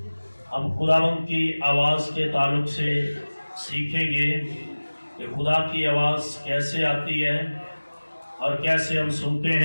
ہم خداوند کی آواز کے تعلق سے سیکھیں گے کہ خدا کی آواز کیسے آتی ہے اور کیسے ہم سنتے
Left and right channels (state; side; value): inverted; both; correlation -1.00